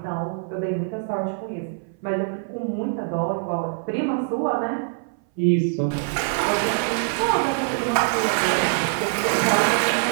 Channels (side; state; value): left; silent; 58 dB below the other